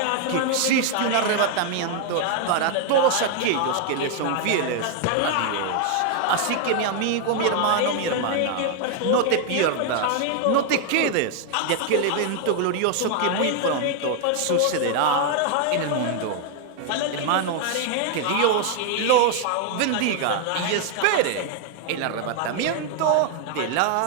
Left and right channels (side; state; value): both; different; correlation 0.00